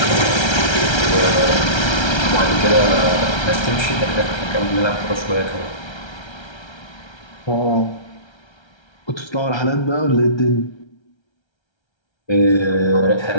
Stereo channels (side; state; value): right; late; 1.3 ms